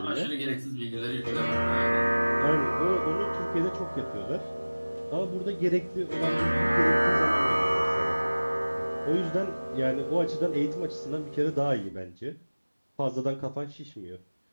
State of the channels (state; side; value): inverted; both; correlation -1.00